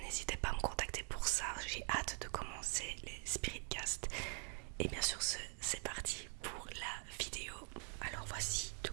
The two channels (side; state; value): left; quieter; 37.3 dB